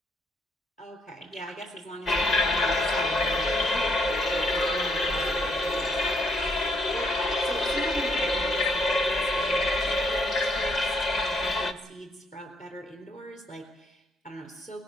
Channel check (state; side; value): normal; both; correlation 0.71